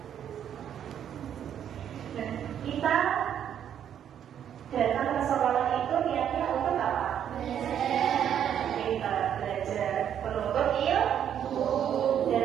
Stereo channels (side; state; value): left; quieter; 9.4 dB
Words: Nah, kita datang ke sekolah itu niatnya untuk apa? Kita belajar menuntut ilmu